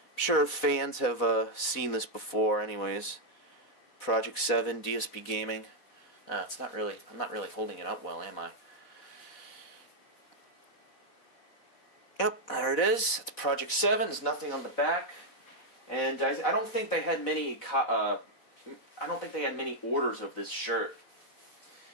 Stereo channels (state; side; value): late; right; 4.1 ms